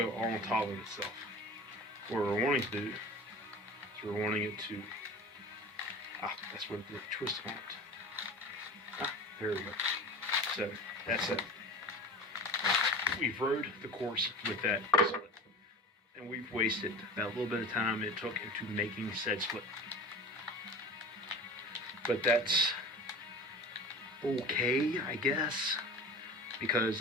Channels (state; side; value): normal; both; correlation 0.35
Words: all on top of itself. What we're wanting to do, we're wanting it to That's what the twist on it. There we go. So that's it. We've rode the course with that split, and we've wasted that little bit of time it took into making said split. But that's okay, I guess, because